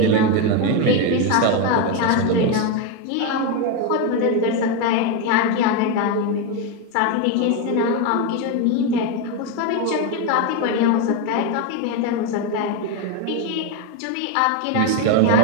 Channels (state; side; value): different; both; correlation 0.03